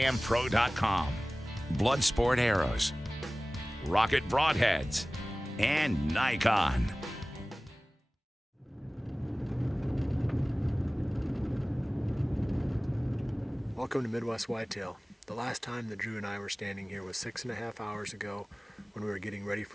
Bloodsport Arrows, Rocket Broadheads, and Nikon. Welcome to Midwest Whitetail. The last time that Drew and I were standing here was 6.5 hours ago when we were getting ready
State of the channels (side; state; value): both; normal; correlation 0.98